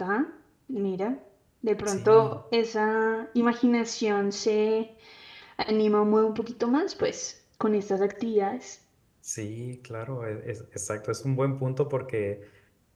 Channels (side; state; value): both; identical; correlation 1.00